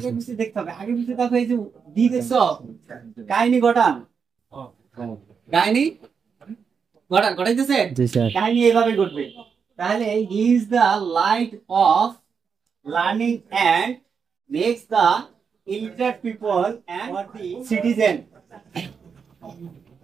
পিছে দেখতে হবে। আগে পিছে দেখো, এই যে ডি দেখছো, কাহিনী ঘটান, কাহিনী ঘটাইতেছে। জি স্যার। কাহিনী এইভাবে ঘটবে। তাহলে is the light of learning and makes the illiterate people and the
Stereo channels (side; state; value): left; quieter; 6.2 dB